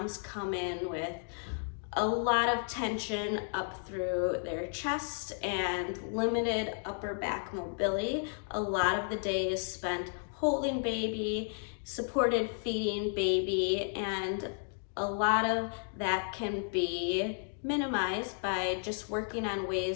come in with a lot of tension up through their chest and limited upper back mobility. A lot of the day is spent holding baby, supported feeding baby, and a lot of that can be minimized by just working on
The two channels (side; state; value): right; silent; 56 dB below the other